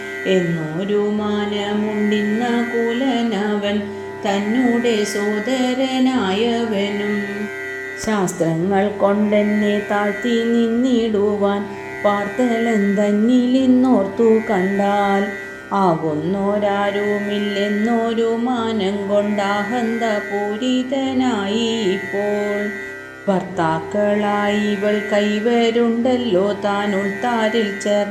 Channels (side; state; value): both; identical; correlation 1.00